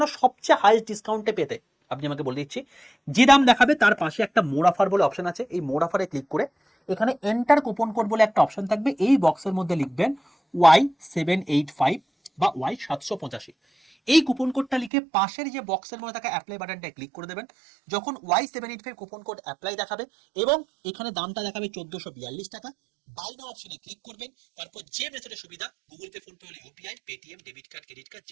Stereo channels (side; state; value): left; drops out; at 14.9 s